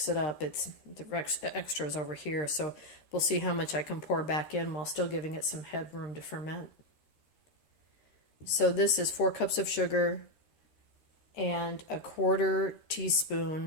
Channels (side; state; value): right; late; 13 ms